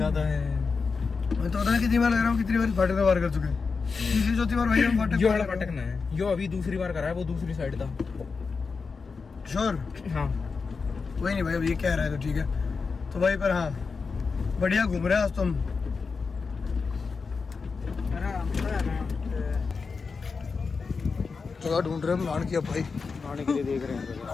है। मैं तो पता नहीं कितनी बार लग रहा हूँ, कितनी बार फाटक में पार कर चुके हैं। तीसरी चौथी बार भाई हम फाटक ना है, यो अभी दूसरी बार करा है, वो दूसरी साइड था। श्योर? हाँ वही नहीं भाई, अब ये कह रहा है तो ठीक है। तो भाई पर हाँ बढ़िया घूम रहे हैं आज तो हम। जगह ढूंढ रहे हैं हम नहाने की, अब भाई नहाने के लिए देख रहे हैं।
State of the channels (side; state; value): right; quieter; 4.9 dB